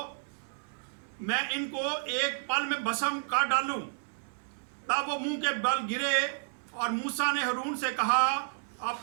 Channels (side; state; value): left; silent; digital silence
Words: मैं इनको एक पल में भस्म कर डालूं। तब वो मुंह के बल गिरे और मूसा ने हारून से कहा,